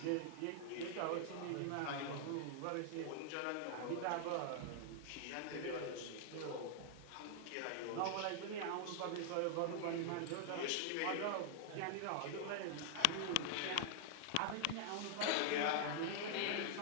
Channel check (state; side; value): different; both; correlation 0.00